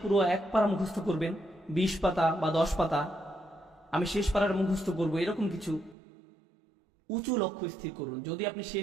পুরো 1 পারা মুখস্থ করবেন, 20 পাতা বা 10 পাতা, আমি শেষ পারার মুখস্থ করব, এরকম কিছু উঁচু লক্ষ্য স্থির করুন। যদি আপনি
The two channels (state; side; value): drops out; left; at 6.0 s